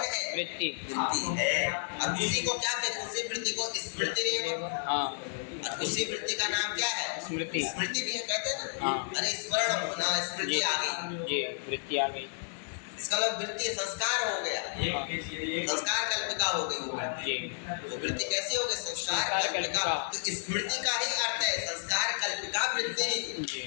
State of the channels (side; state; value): right; silent; digital silence